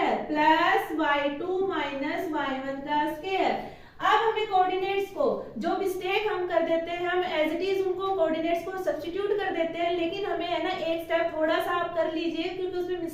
प्लस y2 - y1 का स्क्वायर। अब हमें कोऑर्डिनेट्स को, जो मिस्टेक हम कर देते हैं, हम एज इट इज उनको कोऑर्डिनेट्स को सब्स्टिट्यूट कर देते हैं, लेकिन हमें है ना एक स्टेप थोड़ा सा आप कर लीजिए क्योंकि उसमें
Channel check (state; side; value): identical; both; correlation 1.00